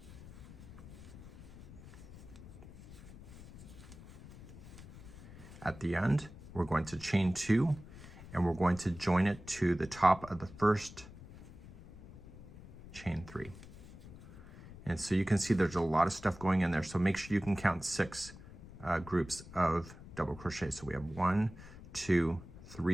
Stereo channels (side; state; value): left; noise; rumble, 16 dB below the sound